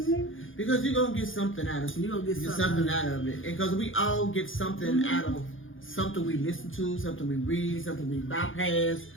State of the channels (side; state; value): right; late; 0.58 ms